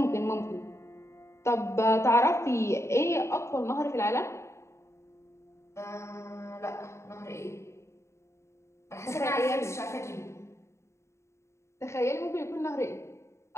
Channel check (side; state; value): right; late; 0.14 ms